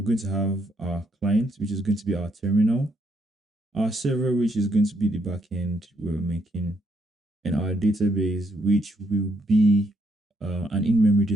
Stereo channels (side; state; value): both; normal; correlation 0.74